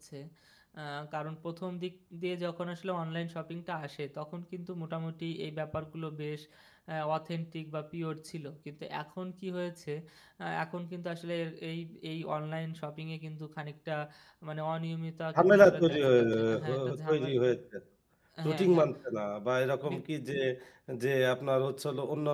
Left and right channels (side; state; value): both; identical; correlation 1.00